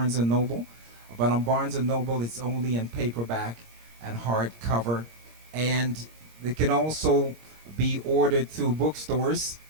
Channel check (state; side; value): late; left; 26 ms